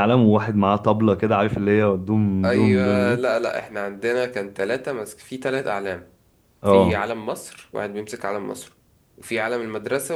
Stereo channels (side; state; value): both; identical; correlation 1.00